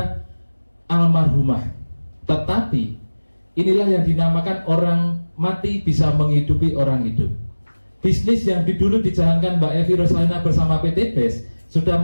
almarhumah. Tetapi inilah yang dinamakan orang mati bisa menghidupi orang hidup. Bisnis yang dulu dijalankan Mbak Evi Rosalina bersama PT BES sudah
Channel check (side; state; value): both; inverted; correlation -1.00